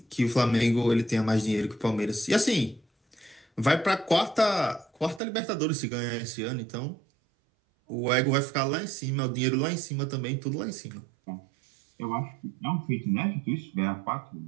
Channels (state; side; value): drops out; left; at 5.2 s